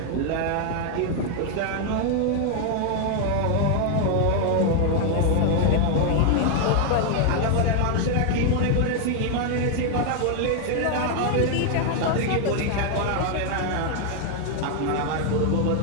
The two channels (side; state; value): both; different; correlation 0.00